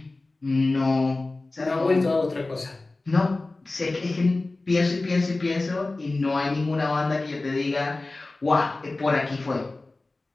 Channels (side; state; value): right; quieter; 3.2 dB